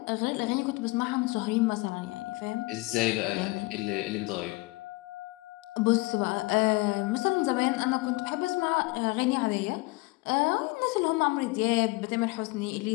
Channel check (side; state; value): right; quieter; 23.5 dB